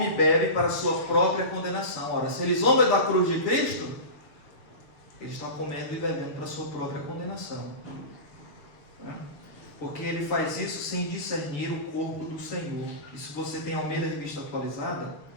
e bebe para a sua própria condenação. Ora, se eles zombam da cruz de Cristo, eles estão comendo e bebendo para a sua própria condenação. Porque ele faz isso sem discernir o corpo do Senhor. E se você tem Almeida Revista Atualizada,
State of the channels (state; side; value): late; right; 6.5 ms